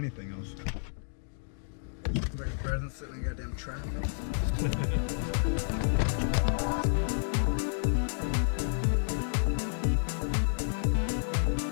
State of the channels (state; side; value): silent; right; digital silence